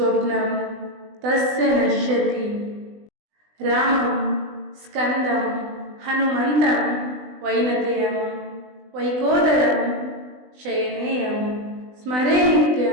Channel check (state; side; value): late; left; 20 ms